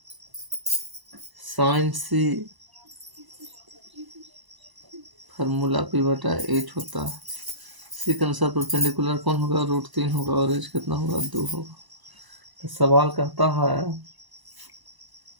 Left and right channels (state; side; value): late; left; 1.0 ms